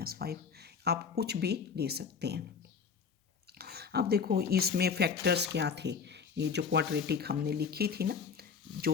आप कुछ भी ले सकते हैं। अब देखो इसमें फैक्टर्स क्या थे, ये जो क्वाड्रेटिक हमने लिखी थी ना, जो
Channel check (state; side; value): quieter; right; 6.1 dB